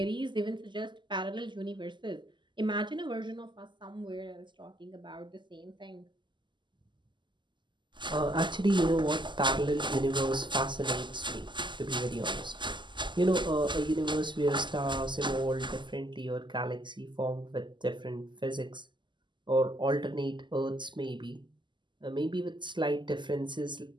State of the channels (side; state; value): left; late; 0.22 ms